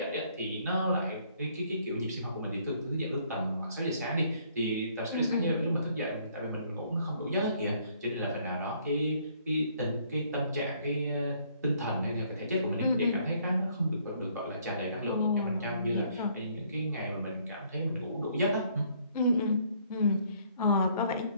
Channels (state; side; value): inverted; both; correlation -0.64